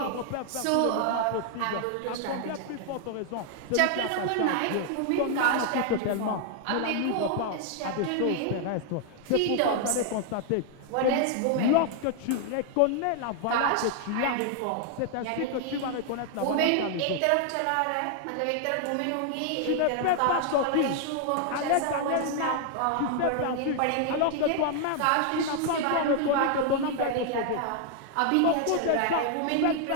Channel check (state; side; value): different; both; correlation 0.00